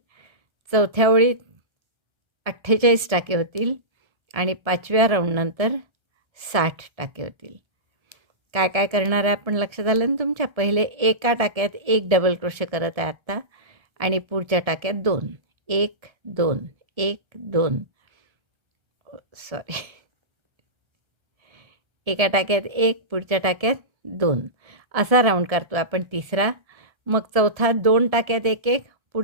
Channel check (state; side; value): late; left; 1.3 ms